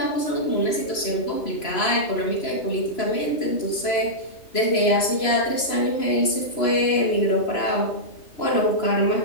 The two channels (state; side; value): late; right; 3.0 ms